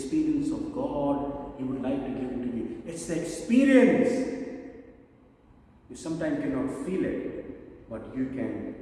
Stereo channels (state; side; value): identical; both; correlation 1.00